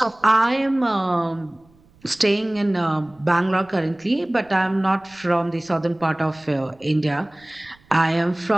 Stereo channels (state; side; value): noise; right; rumble, 30 dB below the sound